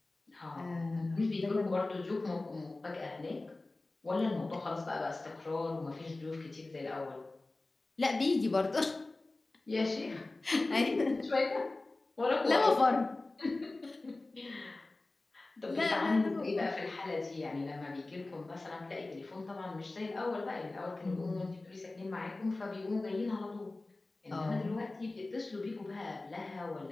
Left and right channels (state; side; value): quieter; right; 3.1 dB